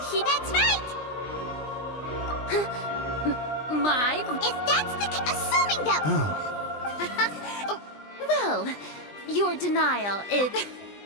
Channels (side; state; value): right; late; 20 ms